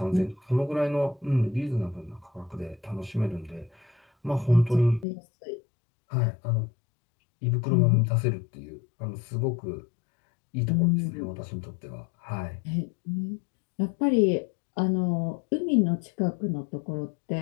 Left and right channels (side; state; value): right; drops out; at 5.1 s